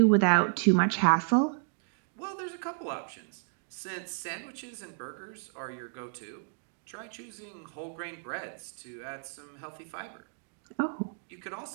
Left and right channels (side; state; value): left; silent; digital silence